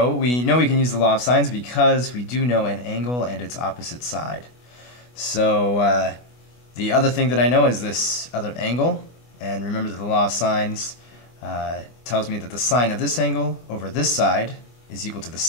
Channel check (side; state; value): right; late; 24 ms